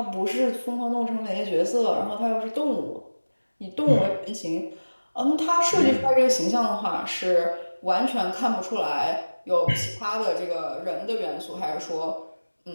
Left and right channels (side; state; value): both; inverted; correlation -1.00